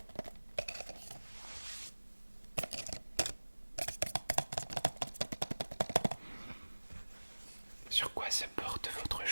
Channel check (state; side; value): inverted; both; correlation -1.00